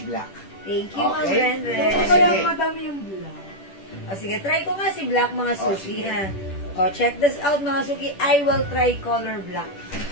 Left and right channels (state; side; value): late; right; 10 ms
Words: Thank you, Ma'am Okay. Renden. Sige. Kaya madami yung bulak. Sige, try ko nga si Black, mga suki, sige. ha? Check this out, mga suki. I will try color black.